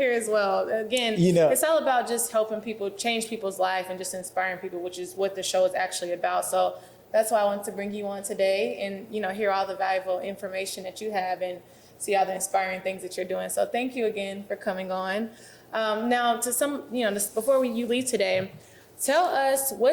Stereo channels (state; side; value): identical; both; correlation 1.00